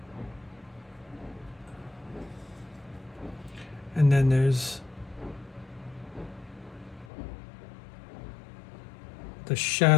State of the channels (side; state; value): right; drops out; at 7.1 s